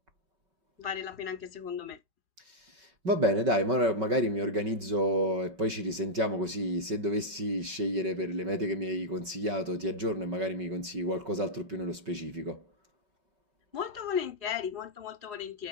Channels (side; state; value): left; late; 5.3 ms